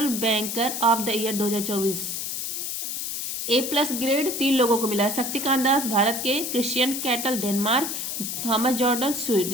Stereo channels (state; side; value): noise; left; hiss, 4 dB below the sound